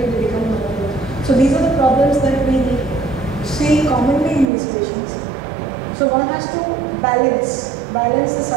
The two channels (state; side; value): drops out; left; at 4.5 s